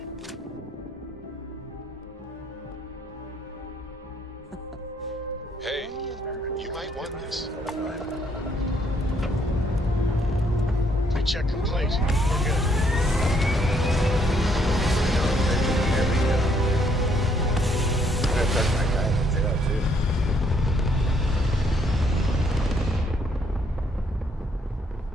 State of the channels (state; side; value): normal; both; correlation 0.69